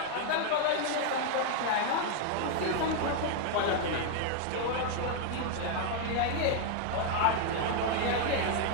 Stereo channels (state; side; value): different; both; correlation 0.01